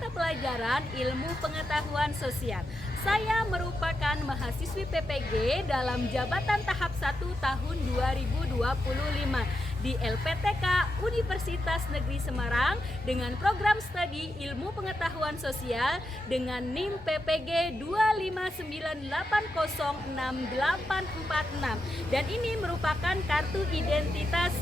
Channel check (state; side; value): normal; both; correlation 0.86